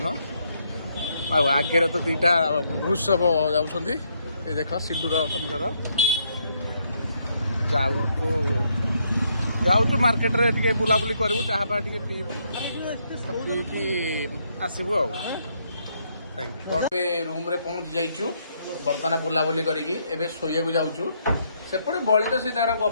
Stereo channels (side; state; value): both; inverted; correlation -0.74